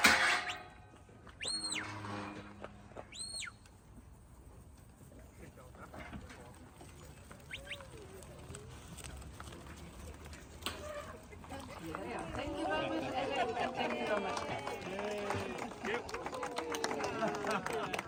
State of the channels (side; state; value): both; identical; correlation 1.00